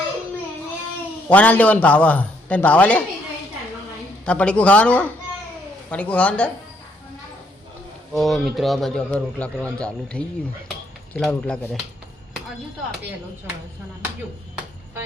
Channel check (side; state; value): both; normal; correlation 0.70